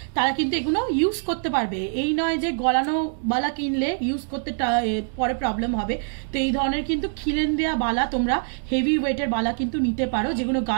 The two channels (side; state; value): left; silent; 61 dB below the other